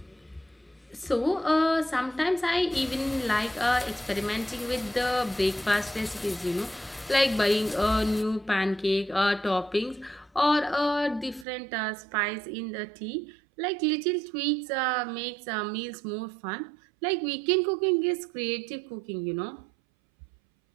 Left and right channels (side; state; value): left; drops out; at 11.5 s